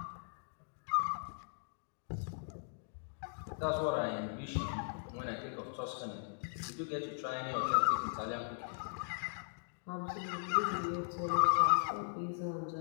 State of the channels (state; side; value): silent; right; digital silence